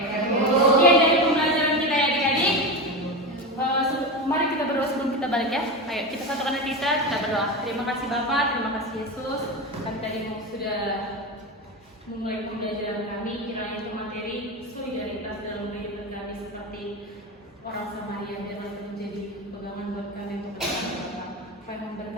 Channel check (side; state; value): both; normal; correlation 0.20